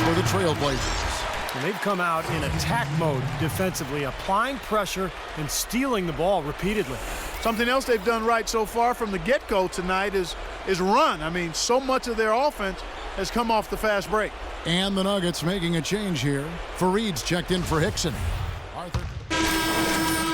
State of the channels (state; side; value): identical; both; correlation 1.00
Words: for the Trailblazers. And they've come out in attack mode defensively, applying pressure and stealing the ball repeatedly. Something else they've done right so far from the get-go tonight is run. I mean, so much of their offense has come off the fast break. And the Nuggets making a change here. Fareed's checked in for Hickson. Arthur.